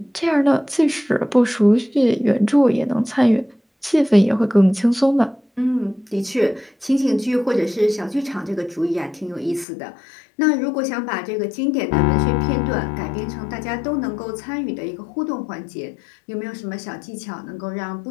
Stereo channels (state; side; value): drops out; right; at 9.7 s